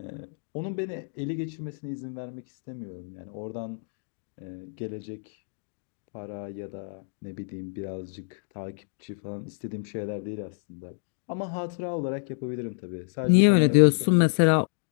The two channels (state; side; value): silent; right; digital silence